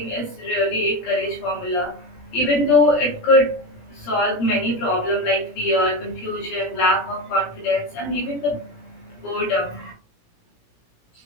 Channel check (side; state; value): right; late; 17 ms